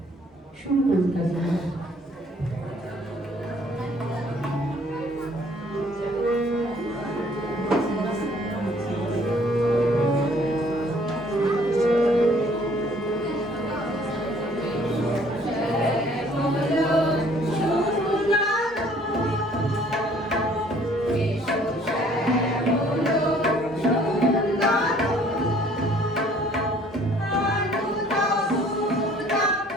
শুরু করুন কাজী।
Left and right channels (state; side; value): normal; both; correlation 0.58